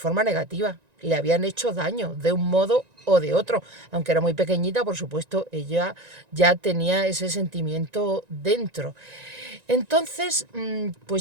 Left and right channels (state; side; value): late; left; 1.9 ms